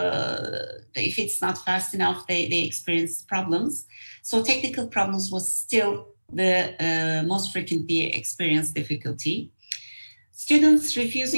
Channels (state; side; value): inverted; both; correlation -1.00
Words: if it's not fast enough, they experience problems. So technical problems was still the most frequently experienced difficulty. Students